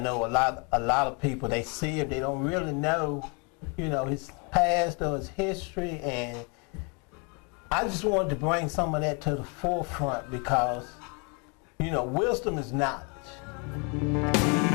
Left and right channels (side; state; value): right; quieter; 33.4 dB